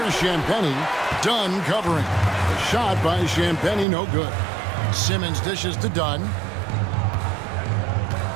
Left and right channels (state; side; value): drops out; left; at 3.9 s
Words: Champagnie. Dunn covering. A shot by Champagnie, no good. Simmons dishes to Dunn.